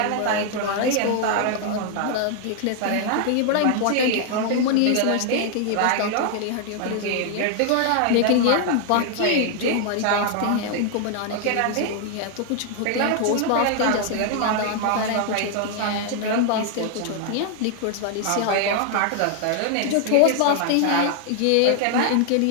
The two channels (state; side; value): different; both; correlation 0.00